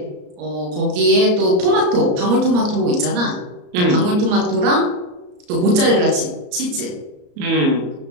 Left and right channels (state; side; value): late; left; 34 ms